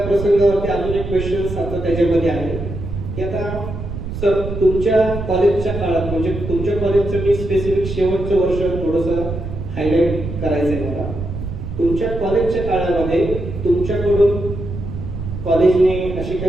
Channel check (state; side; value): noise; right; rumble, 7 dB below the sound